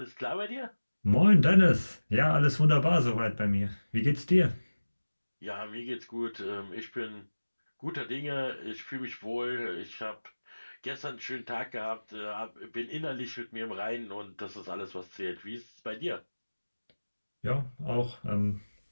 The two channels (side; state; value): both; inverted; correlation -1.00